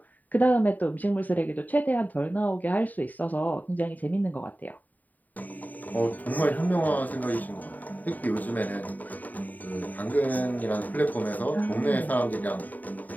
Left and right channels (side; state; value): right; late; 0.081 ms